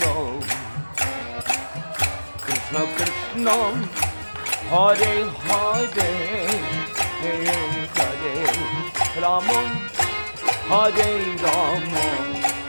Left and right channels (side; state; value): both; inverted; correlation -1.00